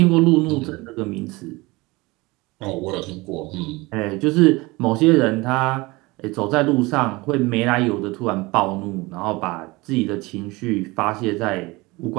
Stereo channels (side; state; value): left; quieter; 22.9 dB